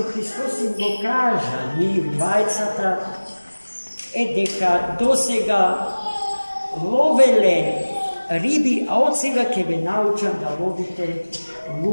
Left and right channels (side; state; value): both; inverted; correlation -1.00